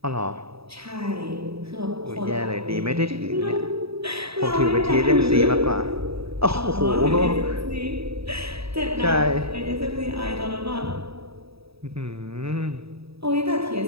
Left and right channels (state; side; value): late; left; 0.77 ms